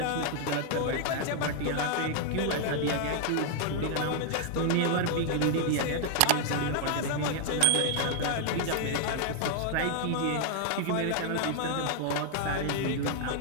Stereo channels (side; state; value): both; different; correlation 0.00